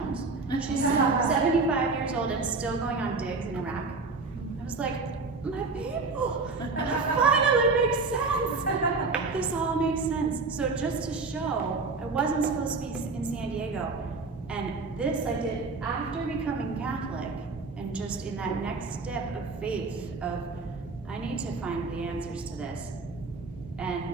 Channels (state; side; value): quieter; left; 4.0 dB